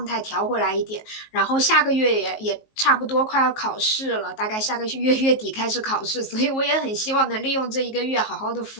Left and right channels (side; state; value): right; late; 19 ms